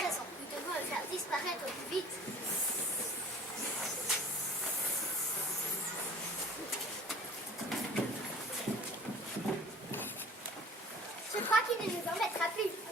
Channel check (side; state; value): both; normal; correlation 0.47